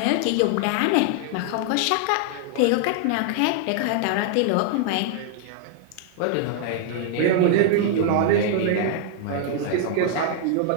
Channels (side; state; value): both; different; correlation 0.00